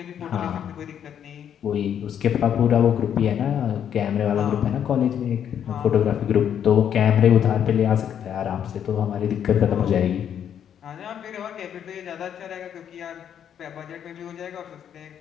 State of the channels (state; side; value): quieter; right; 9.1 dB